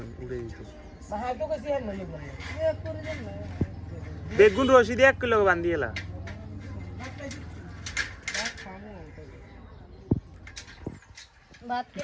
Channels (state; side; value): identical; both; correlation 1.00